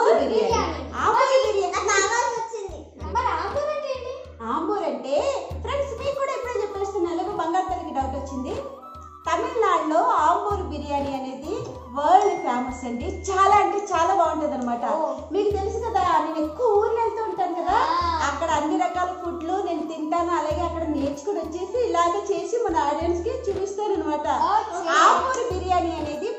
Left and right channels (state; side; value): identical; both; correlation 1.00